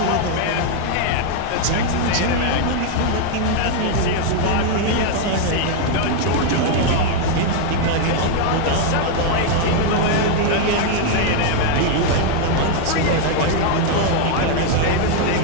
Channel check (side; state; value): both; different; correlation 0.00